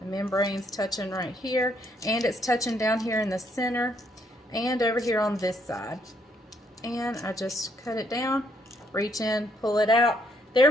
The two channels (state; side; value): normal; both; correlation 0.70